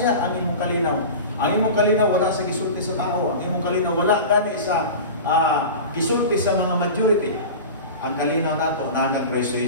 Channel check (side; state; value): both; inverted; correlation -0.31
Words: ang imong kalinaw. Ang imong kalinaw wala sa gisulti sa tao. Ang imong kalinaw wala gani sa gisulti sa mga majority. Ang kalinaw nato na kang Kristo